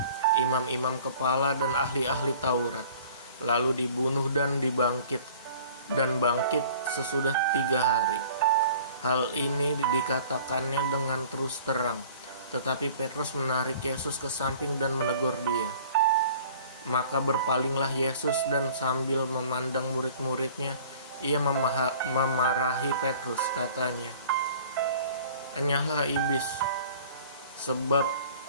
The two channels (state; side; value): inverted; both; correlation -0.48